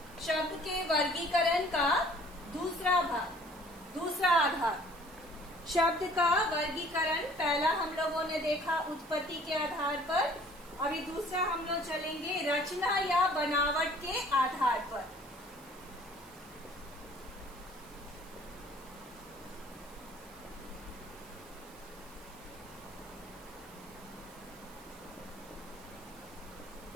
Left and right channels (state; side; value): noise; right; hiss, 21 dB below the sound